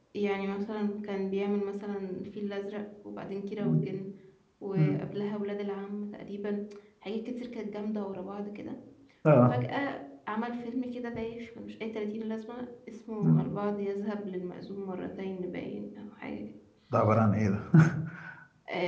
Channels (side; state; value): both; identical; correlation 1.00